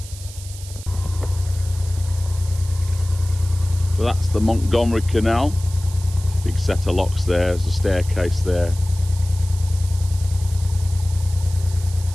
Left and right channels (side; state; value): right; noise; hiss, 16 dB below the sound